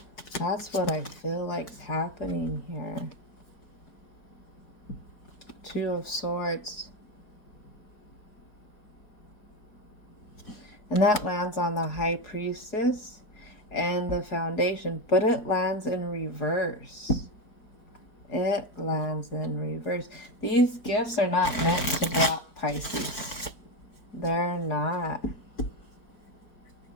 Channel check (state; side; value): late; right; 4.5 ms